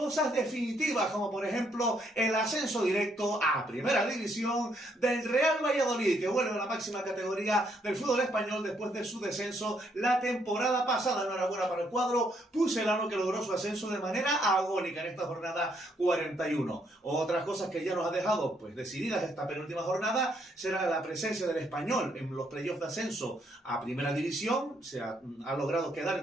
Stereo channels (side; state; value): both; normal; correlation 0.72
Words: definitivas, como por ejemplo el ascenso directo a primera división del Real Valladolid, que vuelve a la máxima categoría del fútbol español después de su descenso la temporada pasada. Enhorabuena para el cuadro pucelano, que logró su ascenso de manera agónica en esta jornada 41. Otras cosas que ya nos ha dejado pues decididas esta penúltima jornada será la presencia del Español en los playoffs de ascenso a primera división. Ha logrado quedar